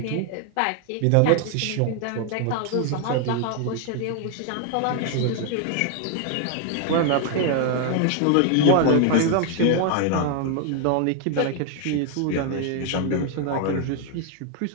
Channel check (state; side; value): different; both; correlation 0.00